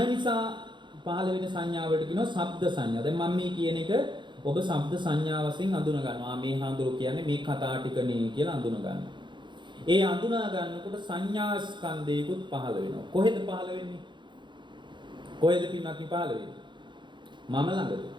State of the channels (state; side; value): late; left; 0.23 ms